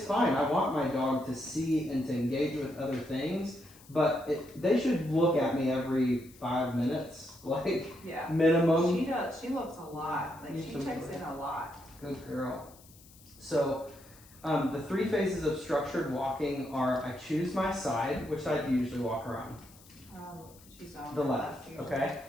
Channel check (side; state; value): left; noise; hiss, 24 dB below the sound